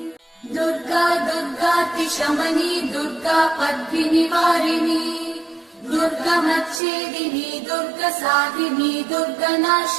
दुर्गा दुर्गातिशमनी दुर्गा पद्मिनिवारिणी दुर्गमच्छेदिनी दुर्गसाधिनी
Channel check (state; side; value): drops out; left; at 6.8 s